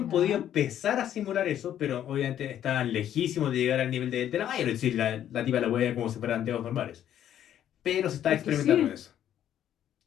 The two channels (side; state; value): right; quieter; 10.7 dB